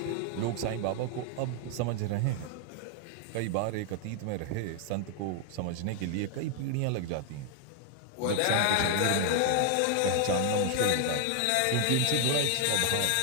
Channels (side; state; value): both; different; correlation 0.00